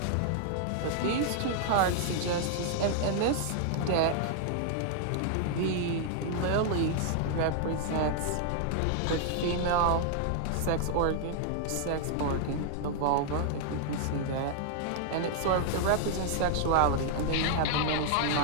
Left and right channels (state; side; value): different; both; correlation -0.01